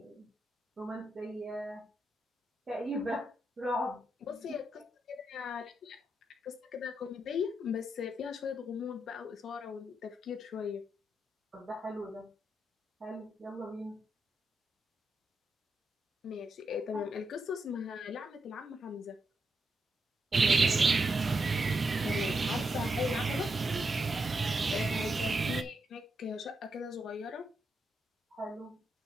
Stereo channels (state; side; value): normal; both; correlation 0.83